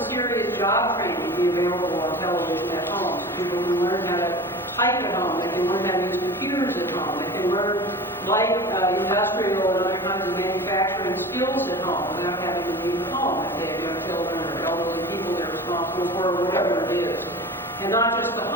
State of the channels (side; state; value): both; normal; correlation 0.35